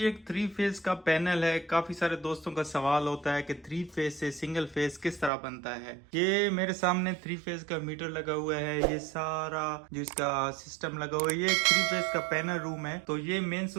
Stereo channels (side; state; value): left; drops out; at 5.3 s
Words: एक 3 फेज का पैनल है। काफी सारे दोस्तों का सवाल होता है कि 3 फेज से सिंगल फेज किस तरह बनता है। ये मेरे सामने 3 फेज का मीटर लगा हुआ है। ये सारा जो इसका सिस्टम लगा हुआ है, ये एक 3 फेज का पैनल रूम है। तो ये मेन